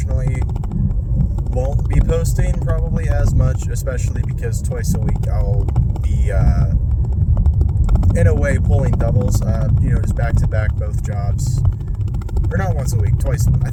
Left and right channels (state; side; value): identical; both; correlation 1.00